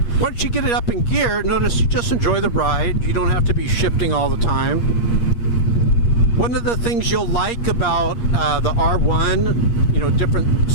once you get it up in gear, notice you just enjoy the ride. You don't have to be shifting all the time. One of the things you'll like about the R1, you know, different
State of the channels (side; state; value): right; late; 8.5 ms